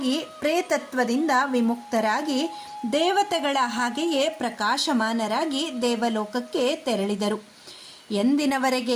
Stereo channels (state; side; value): identical; both; correlation 1.00